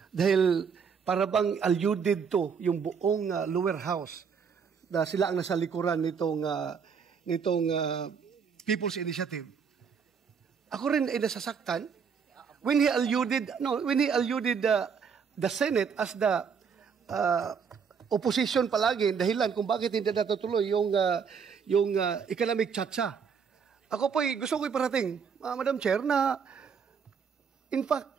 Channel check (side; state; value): left; quieter; 6.4 dB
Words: dahil para bang alluded to yung buong lower house na sila ang nasa likuran nitong People's Initiative. Ako rin ay nasasaktan when he alluded the Senate as the opposition palagi dahilan kung bakit hindi natutuloy yung economic chacha. Ako po gusto ko iparating, Madam Chair, na in